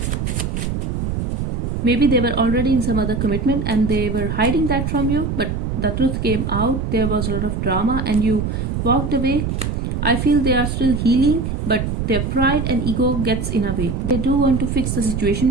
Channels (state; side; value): noise; right; rumble, 2 dB below the sound